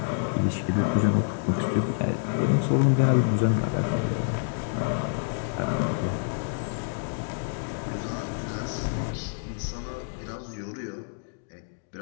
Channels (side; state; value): right; silent; digital silence